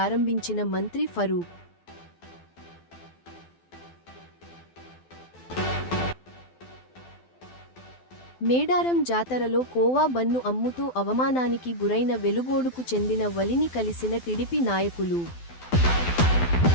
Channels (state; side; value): late; right; 12 ms